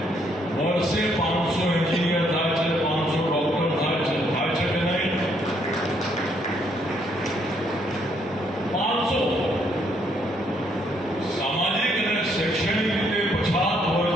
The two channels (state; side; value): normal; both; correlation 0.70